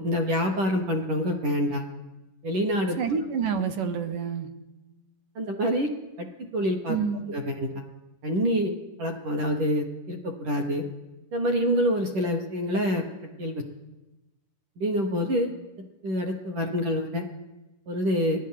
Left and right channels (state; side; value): late; left; 10 ms